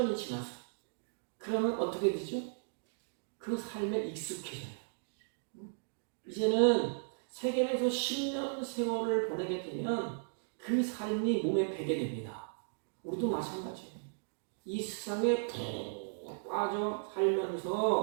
지났어요. 그러면 어떻게 되죠? 그 삶에 익숙해져요. 이제는 세겜에서 10년 세월을 보내게 되면 그 삶이 몸에 배게 됩니다. 우리도 마찬가지예요. 이 세상에 푹 빠져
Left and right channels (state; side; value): silent; left; digital silence